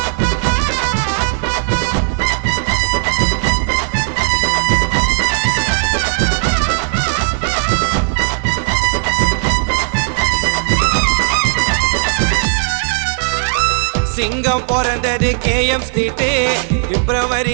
சிங்கம் பிறந்தது KM ஸ்ட்ரீட் பிப்ரவரி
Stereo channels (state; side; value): silent; left; 57 dB below the other